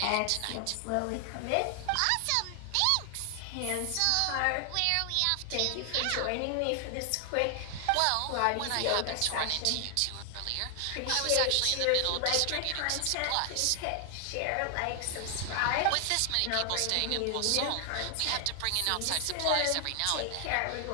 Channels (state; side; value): different; both; correlation 0.00